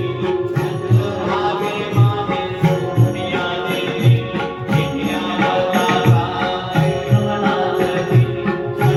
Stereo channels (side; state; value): both; identical; correlation 1.00